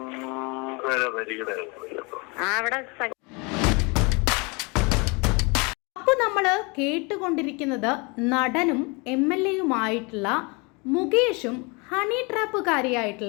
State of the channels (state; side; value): quieter; right; 29.2 dB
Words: അവിടെ. അപ്പോൾ നമ്മൾ കേട്ടുകൊണ്ടിരിക്കുന്നത് നടനും MLA-യുമായിട്ടുള്ള മുകേഷും ഹണി